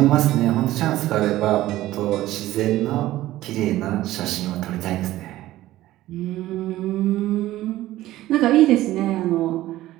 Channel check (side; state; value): left; quieter; 15.5 dB